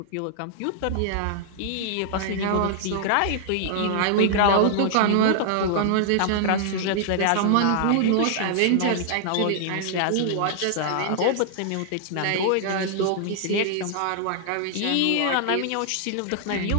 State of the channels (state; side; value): different; both; correlation -0.01